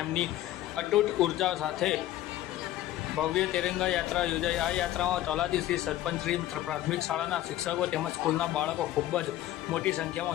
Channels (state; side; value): quieter; right; 14.0 dB